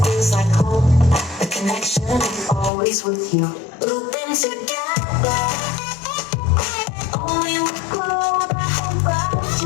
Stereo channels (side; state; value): right; drops out; at 2.7 s